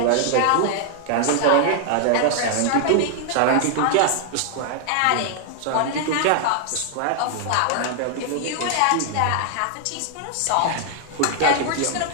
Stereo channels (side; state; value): both; different; correlation 0.00